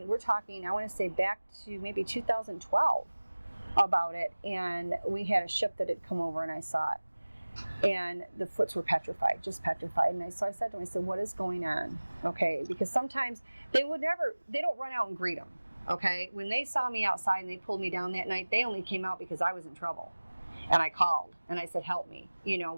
we're talking, I want to say back to maybe 2012 about it, and we had a ship that had come over and I saw it. And the foots were petrified, just petrified. And so I said to him, I said, what is going on? Okay, because sometimes they don't run out and greet them. Okay, when they saw me outside and they pulled me down that night, they only came out because I was in trouble. And I called and I said, help me,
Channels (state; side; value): inverted; both; correlation -1.00